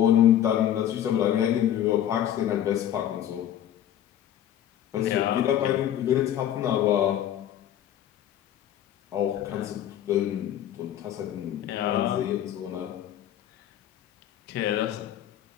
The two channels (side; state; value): right; quieter; 11.1 dB